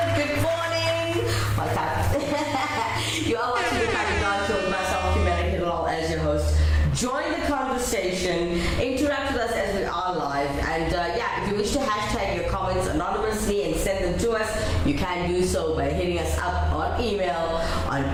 good morning. Welcome. You are watching the Crack of Dawn show with myself, Kimera, Heeralal, as your host. Join the conversation, interact with us as we are live, and if you wish to hashtag your comments anonymously and send them to us, you can do so by hitting us up on email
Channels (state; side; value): identical; both; correlation 1.00